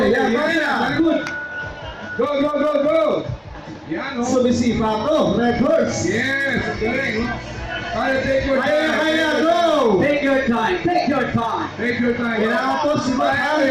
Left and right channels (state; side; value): identical; both; correlation 1.00